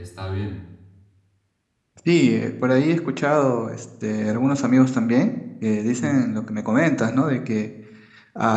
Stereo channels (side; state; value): both; identical; correlation 1.00